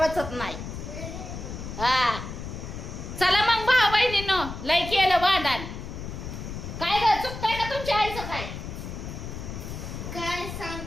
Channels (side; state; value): left; noise; rumble, 8 dB below the sound